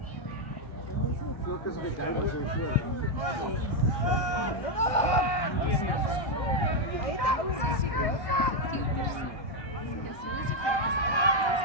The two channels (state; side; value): late; right; 1.3 ms